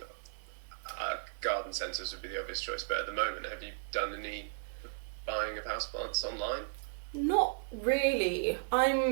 garden centres would be the obvious choice, but at the moment, have you done any buying of houseplants online? Not really.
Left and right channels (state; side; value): silent; left; 54 dB below the other